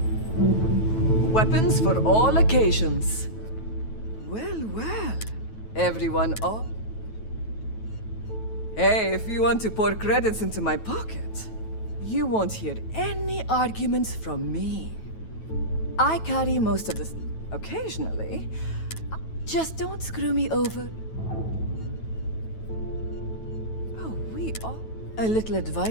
Weapons for all occasions. Well, well. Everyone up? Hey, if you want to pour credits into my pocket, you won't hear any arguments from me. I carry most of the... occasionally. Just don't screw me over. Oh, we are... A little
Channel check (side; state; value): right; late; 9.2 ms